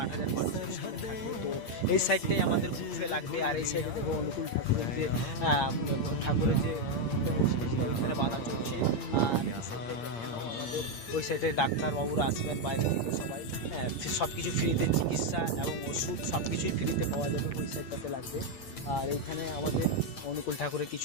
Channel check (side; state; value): right; late; 8.7 ms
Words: মানুষের সামনে থাকবে। তো এই সাইডটাই আমাদের বুফে লাগবে, আর এই সাইডে দেখবো অনুকূল ঠাকুরের যে ওইখানে বাঁধা চলছে। আর আমাদের ওই সাইডে ডাক্তারবাবুরা আসবেন বাইরে থেকে সবাই। হ্যাঁ, সব কিছু ফ্রিতে, চিকিৎসা এবং ওষুধ সব কিছুই ফ্রিতে পাওয়া যাবে, ওই সাইডটাতে লাগবে। আর এইখানে আমাদের অনুকূল ঠাকুরের